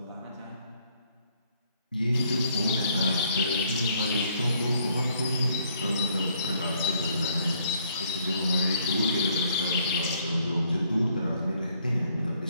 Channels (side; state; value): both; inverted; correlation -0.67